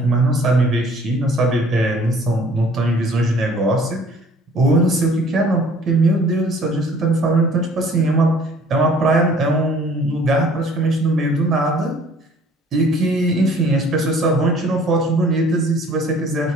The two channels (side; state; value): both; normal; correlation 0.54